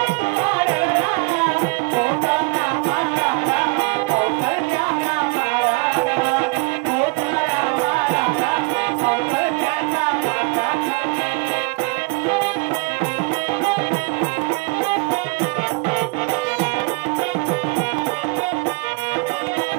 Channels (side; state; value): left; quieter; 30.3 dB